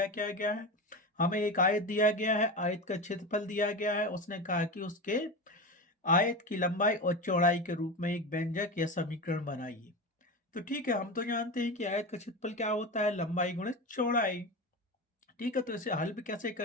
क्या गया है, हमें एक आयत दिया गया है, आयत का क्षेत्रफल दिया गया है। उसने कहा कि उसके आयत की लंबाई और चौड़ाई के रूप में एक व्यंजक या समीकरण बनाइए। तो ठीक है, हम तो जानते हैं कि आयत का क्षेत्रफल क्या होता है, लंबाई गुणित चौड़ाई। ठीक है, तो इसे हल भी कैसे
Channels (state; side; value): normal; both; correlation 0.23